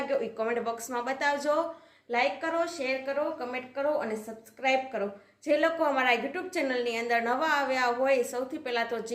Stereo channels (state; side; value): identical; both; correlation 1.00